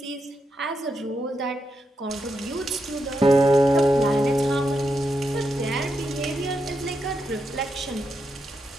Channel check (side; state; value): both; normal; correlation 0.83